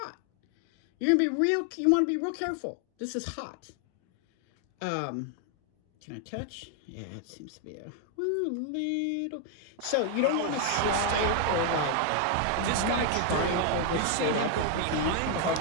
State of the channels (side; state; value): both; different; correlation 0.00